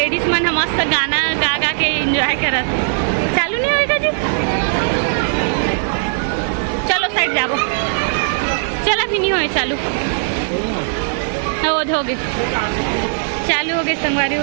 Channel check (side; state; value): left; silent; 58 dB below the other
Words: मन मस्त गाना गा गा के एंजॉय करत। चालू नहीं होएगा जी, चलो साइड जाबो। चला भी नहीं होए चालू हो गए चालू हो गए संगवारी